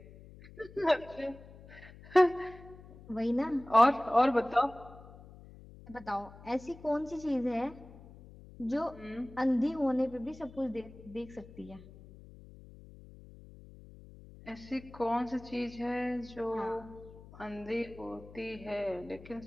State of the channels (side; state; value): left; noise; hum, 19 dB below the sound